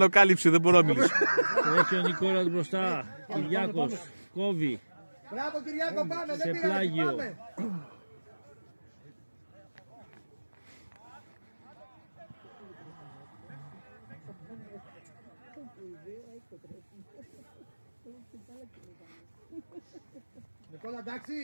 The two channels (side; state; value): both; inverted; correlation -1.00